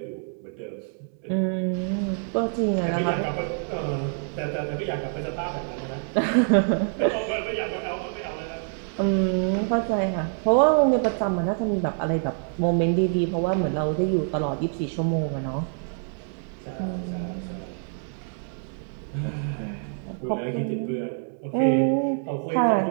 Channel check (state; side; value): silent; left; 59 dB below the other